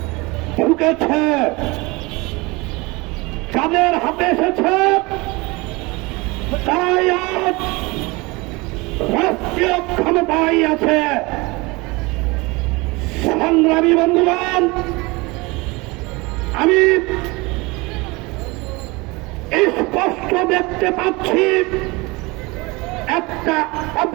ঢুকেছে। যাদের হাতে এসেছে তারাই আজ রাষ্ট্রীয় ক্ষমতায় আছে। সংগ্রামী বন্ধুগণ, আমি স্পষ্ট দেখতে পাচ্ছি একটা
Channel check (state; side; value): quieter; left; 24.5 dB